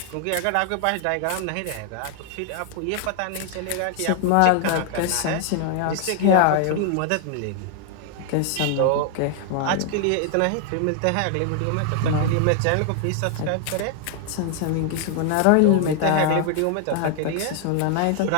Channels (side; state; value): both; different; correlation 0.00